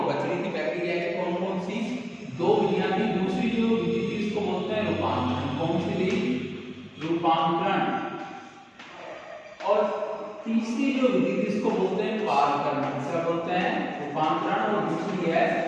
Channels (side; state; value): both; identical; correlation 1.00